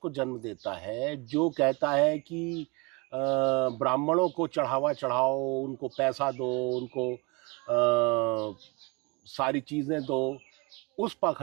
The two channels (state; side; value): quieter; left; 28.3 dB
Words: जन्म देता है, जो कहता है कि ब्राह्मणों को चढ़ावा चढ़ाओ, उनको पैसा दो, उनको सारी चीज़ें दो, उस